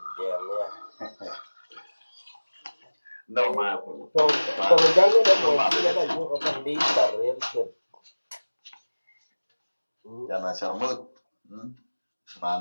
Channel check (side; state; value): both; inverted; correlation -1.00